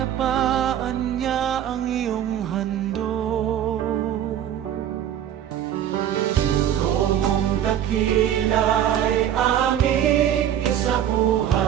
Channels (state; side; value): quieter; left; 10.5 dB